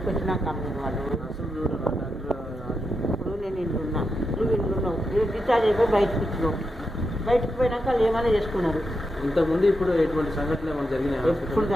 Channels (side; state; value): both; normal; correlation 0.86